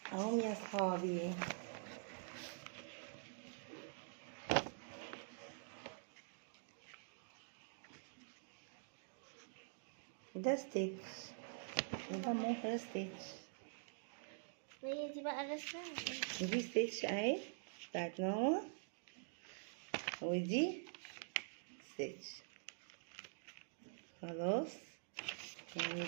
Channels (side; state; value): left; silent; digital silence